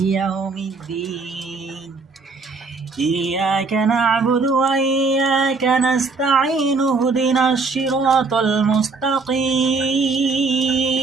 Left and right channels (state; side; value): quieter; left; 4.2 dB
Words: يوم الدين إياك نعبد وإياك نستعين اهدنا الصراط المستقيم